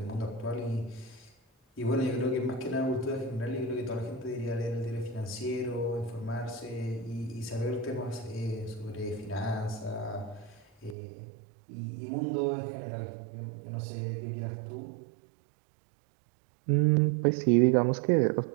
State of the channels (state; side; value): drops out; left; at 11.0 s